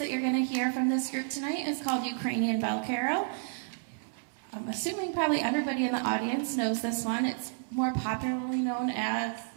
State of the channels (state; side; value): silent; left; 57 dB below the other